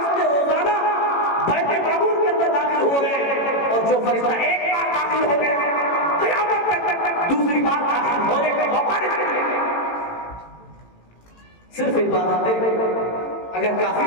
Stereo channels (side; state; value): right; late; 18 ms